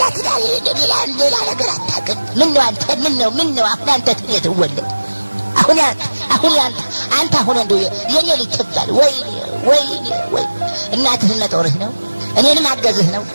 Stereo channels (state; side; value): inverted; both; correlation -1.00